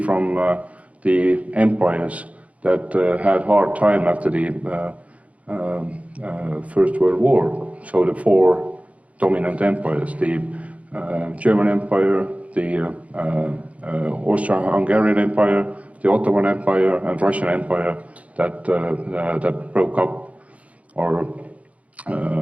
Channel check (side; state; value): left; late; 0.066 ms